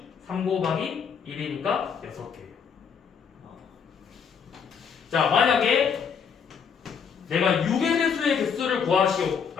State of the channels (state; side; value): quieter; right; 6.7 dB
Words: 3 곱하기 1이니까 6개예요. 자, 만약에 내가 6의 배수의 개수를 구하시오